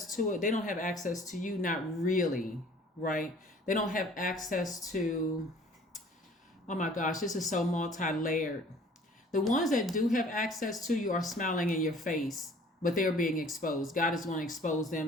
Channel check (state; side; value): normal; both; correlation 0.52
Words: to it. They don't have access to you, not really, right? They don't have access to, oh my gosh, this is so multi-layered. The ones that do have access to you are smiling in your face, but they're being exposed. God is going to expose